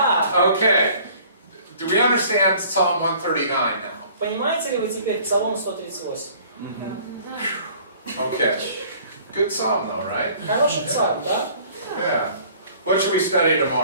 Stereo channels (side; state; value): both; inverted; correlation -0.53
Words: Okay. Do we understand Psalm 139 now? Понимаете ли вы теперь Псалом 138? Okay. Good psalm though, right? Хороший псалм, да? Yeah. What should we study